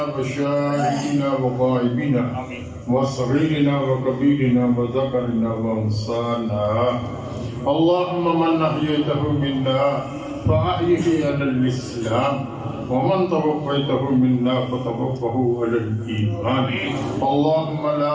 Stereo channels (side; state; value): both; identical; correlation 1.00